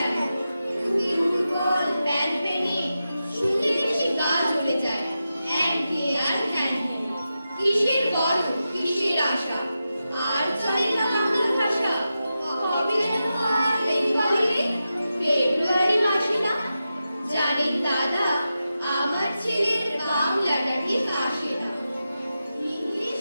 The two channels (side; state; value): both; inverted; correlation -0.91